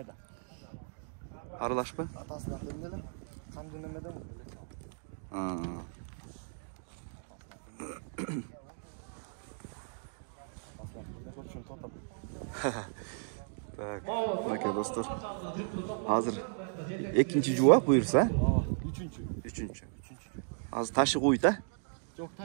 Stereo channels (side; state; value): left; silent; digital silence